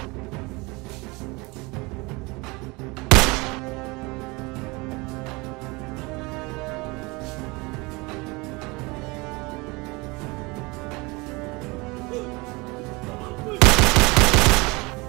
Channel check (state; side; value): quieter; left; 25.4 dB